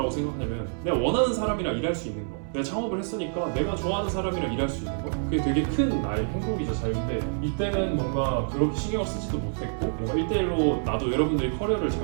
생각하냐면 내가 원하는 사람이랑 일할 수 있는 거. 내가 창업을 했으니까 내가 좋아하는 사람이랑 일할 수 있는 거, 그게 되게 큰 나의 행복이자 자유인데 이때는 뭔가 그렇게 신경을 쓰지도 못했고 뭔가 1대1로 나도 여러분들이 커리어를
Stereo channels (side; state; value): left; silent; 60 dB below the other